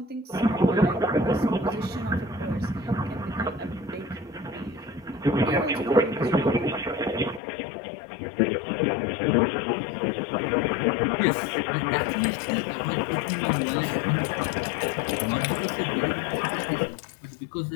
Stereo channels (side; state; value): right; drops out; at 7.4 s